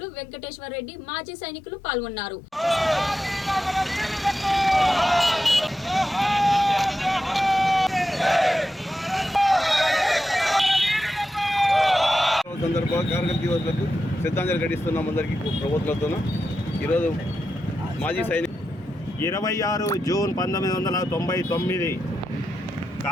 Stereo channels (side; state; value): both; normal; correlation 0.88